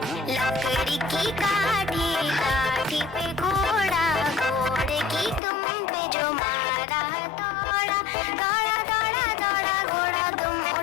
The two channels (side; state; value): right; drops out; at 5.4 s